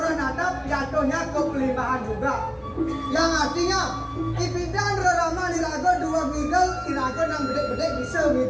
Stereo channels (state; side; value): identical; both; correlation 1.00